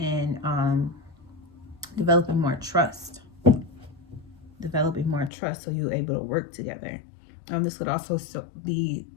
developing more trust so you're able to work together. This would also be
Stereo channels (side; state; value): right; drops out; at 5.3 s